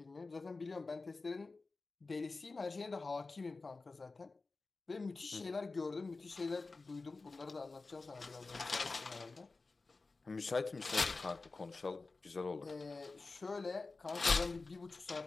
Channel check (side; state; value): right; quieter; 3.7 dB